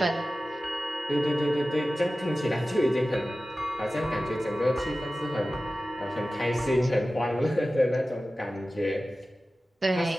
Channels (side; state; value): both; normal; correlation 0.95